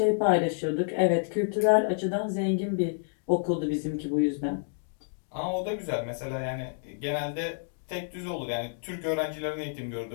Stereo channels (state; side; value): silent; right; digital silence